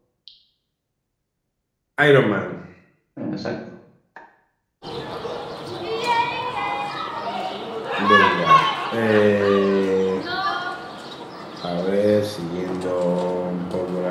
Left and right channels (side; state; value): both; identical; correlation 1.00